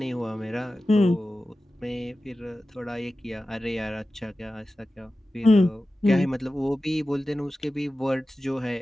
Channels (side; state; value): both; normal; correlation 0.95